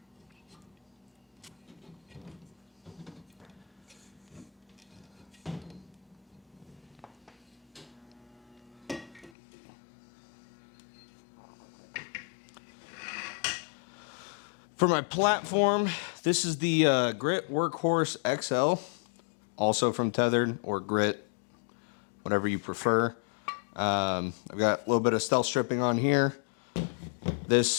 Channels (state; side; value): drops out; right; at 9.3 s